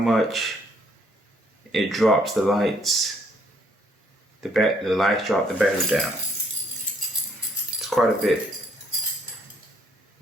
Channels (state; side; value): normal; both; correlation 0.67